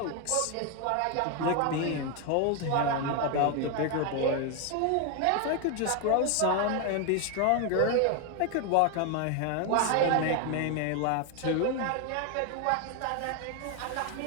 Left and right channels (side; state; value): both; different; correlation 0.01